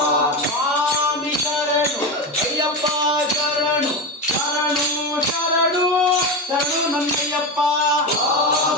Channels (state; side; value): normal; both; correlation 0.18